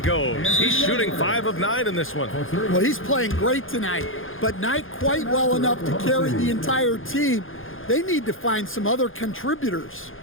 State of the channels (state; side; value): late; right; 0.59 ms